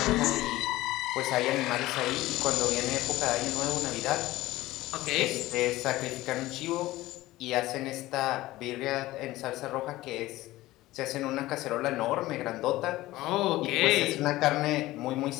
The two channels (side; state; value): right; quieter; 17.3 dB